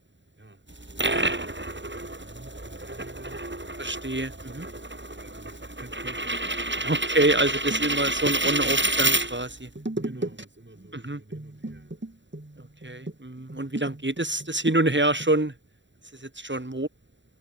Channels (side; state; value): left; late; 0.53 ms